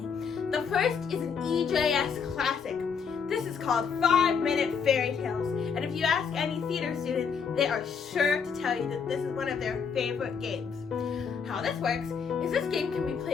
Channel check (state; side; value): quieter; right; 6.3 dB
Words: The first is an EJS classic. This is called 5-Minute Fairy Tales, and if you ask any theater student, they are sure to tell you that this is one of their favorite games. How this works is this game can be